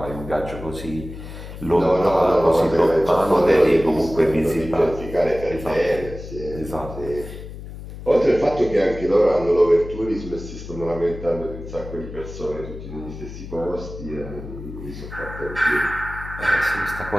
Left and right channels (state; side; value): noise; left; hum, 12 dB below the sound